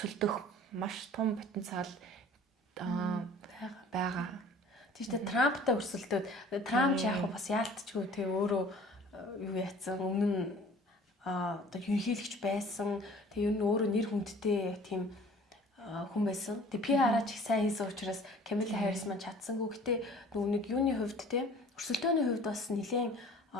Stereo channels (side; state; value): both; normal; correlation 0.49